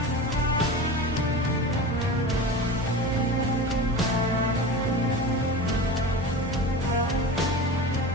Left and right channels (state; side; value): normal; both; correlation 0.31